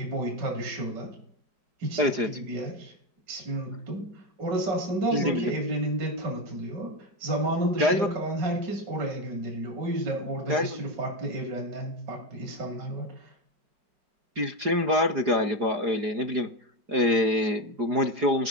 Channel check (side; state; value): left; late; 4.9 ms